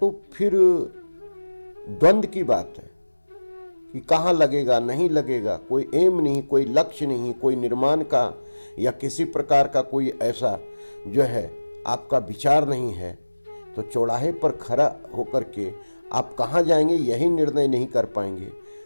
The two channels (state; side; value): inverted; both; correlation -1.00